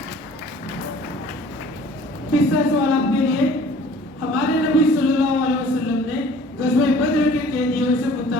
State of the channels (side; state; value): both; normal; correlation 0.50